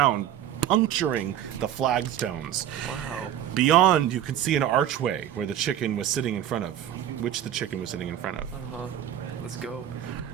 puncturing the flagstones. Wow. Beyond, you can see an archway where the chicken was sitting in front of, which the chicken was sitting in front of. Let's go.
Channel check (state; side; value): quieter; left; 10.8 dB